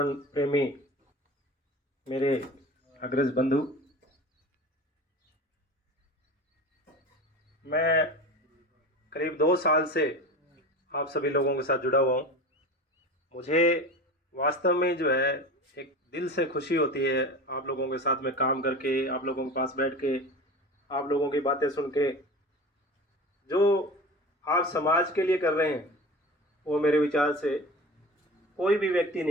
प्रेमी मेरे अग्रज बंधु, मैं करीब 2 साल से आप सभी लोगों के साथ जुड़ा हुआ हूँ। मुझे वास्तव में जो है एक दिल से खुशी होती है आप लोगों के साथ में काम करके, आप लोगों के पास बैठ के, आप लोगों की बातें सुन के। जो आप समाज के लिए कर रहे हैं वो मेरे विचार से कोई भी व्यक्ति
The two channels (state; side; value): normal; both; correlation 0.33